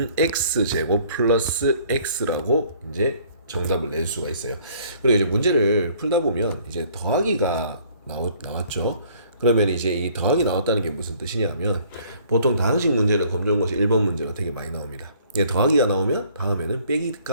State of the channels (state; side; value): inverted; both; correlation -0.58